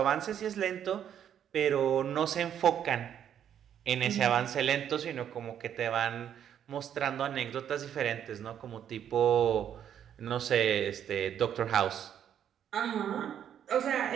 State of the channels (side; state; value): left; quieter; 9.5 dB